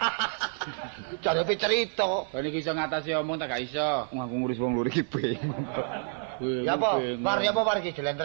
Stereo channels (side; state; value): left; silent; 59 dB below the other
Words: Jarepe cerita. Kok niki iso ngatasi omong tak gak iso. Aku ngurus wong loro iki bingung. Ya apa? Par iki